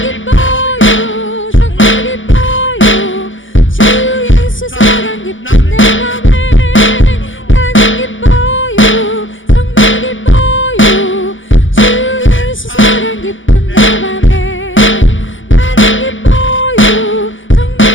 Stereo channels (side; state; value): right; late; 0.56 ms